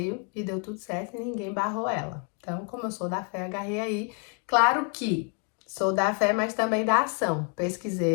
e deu tudo certo e ninguém barrou ela. Então, como eu sou da fé, agarrei aí. Claro que sou da fé, mas também da ação.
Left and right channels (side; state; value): right; quieter; 38.9 dB